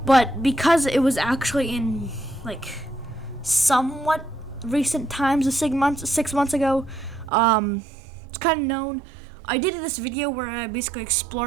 but because it was actually in somewhat recent times, 6 months ago, it's kind of known. I did this video where I basically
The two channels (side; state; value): left; drops out; at 7.3 s